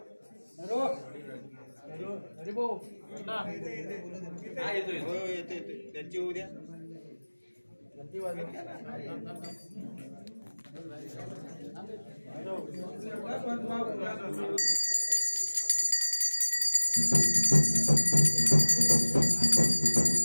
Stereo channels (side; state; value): both; inverted; correlation -1.00